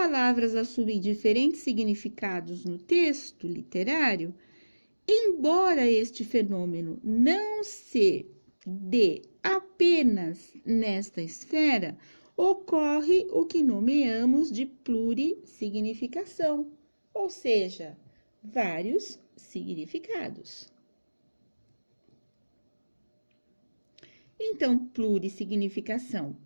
assumem diferentes significados no texto literário, embora este fenômeno não se dê apenas nesta esfera, ocorre o que nomeamos de plurissignificação, ou seja, vários significados. Então, plurissignificação.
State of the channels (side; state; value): both; inverted; correlation -1.00